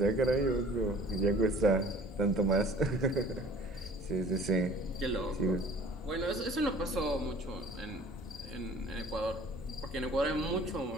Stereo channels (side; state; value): both; normal; correlation 0.49